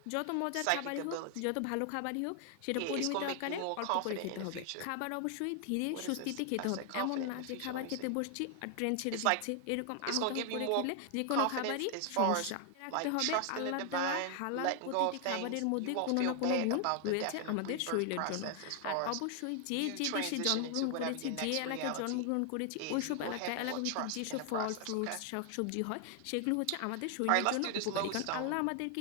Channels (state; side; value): different; both; correlation 0.00